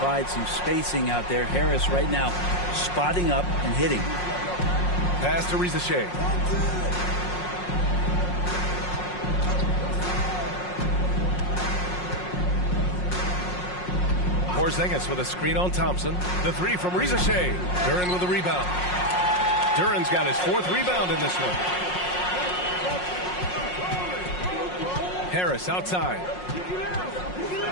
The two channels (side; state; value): right; late; 5.5 ms